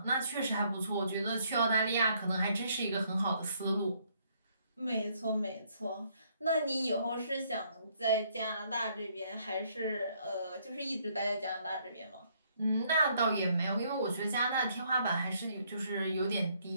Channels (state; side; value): inverted; both; correlation -0.68